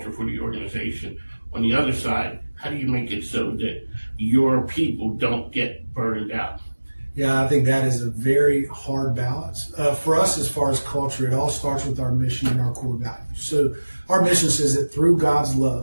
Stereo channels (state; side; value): inverted; both; correlation -1.00